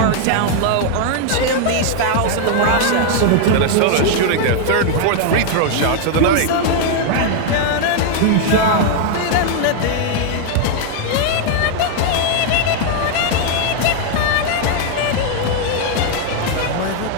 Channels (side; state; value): both; different; correlation 0.00